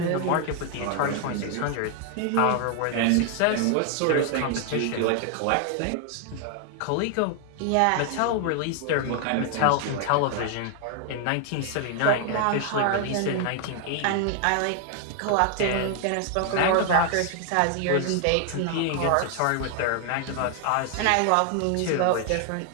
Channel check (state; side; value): different; both; correlation 0.00